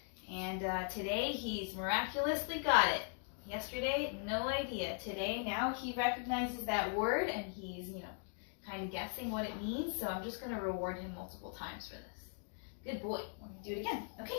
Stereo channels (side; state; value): right; silent; 51 dB below the other